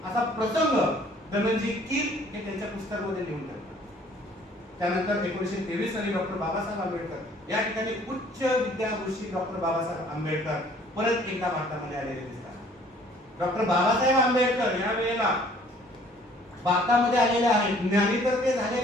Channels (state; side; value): normal; both; correlation 0.57